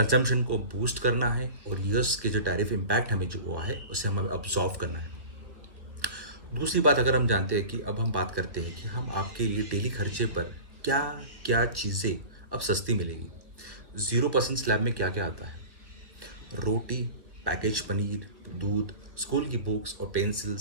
को बूस्ट करना है और ईयर्स के जो टैरिफ इम्पैक्ट हमें जो हुआ है उसे हमें अब्जॉर्व करना है। दूसरी बात, अगर हम जानते हैं कि अब हम बात करते हैं कि हम आपके लिए डेली खर्चे पर क्या क्या चीज़ें अब सस्ती मिलेगी। 0% स्लैब में क्या क्या आता है? रोटी, पैकेज पनीर, दूध, स्कूल की बुक्स और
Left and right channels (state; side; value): late; left; 1.4 ms